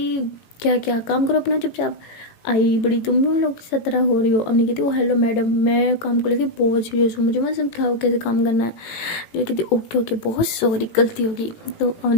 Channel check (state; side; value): late; right; 18 ms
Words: क्या क्या काम करो अपना चुपचाप, आई बड़ी तुम भी उन लोग की तरह हो रही हो। अम्मी कहती ओ हेलो मैडम, मैं काम को लेके बहुत सीरियस हूँ, मुझे मत समझाओ कैसे काम करना है। मेरी कहती ओके ओके बहुत सॉरी गलती होगी। तो